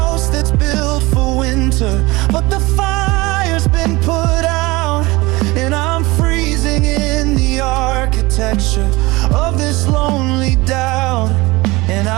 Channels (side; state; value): left; quieter; 22.1 dB